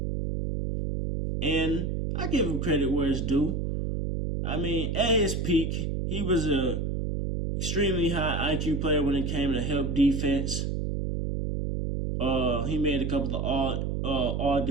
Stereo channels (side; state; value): right; noise; hum, 1 dB below the sound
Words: And I give him credit where it's due. I mean, at his peak, he was a extremely high IQ player when it came to help defense. He made a couple of all